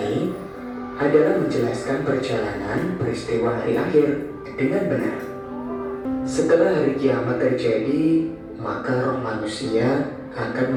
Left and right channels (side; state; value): both; identical; correlation 1.00